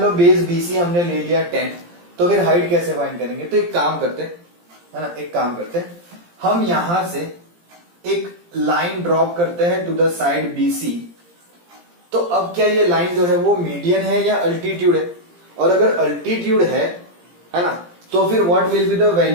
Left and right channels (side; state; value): left; late; 17 ms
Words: लो बेस बीसी हमने ले लिया 10, तो फिर हाइट कैसे फाइंड करेंगे? तो एक काम करते, है ना, एक काम करते, हम यहां से एक लाइन ड्रॉप करते हैं टू द साइड बीसी। तो अब क्या ये लाइन जो है वो मीडियन है या अल्टीट्यूड है? और अगर अल्टीट्यूड है ना, तो फिर what will be the